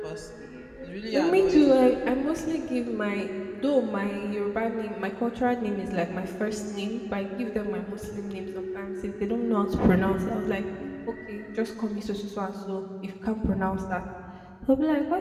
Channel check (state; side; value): identical; both; correlation 1.00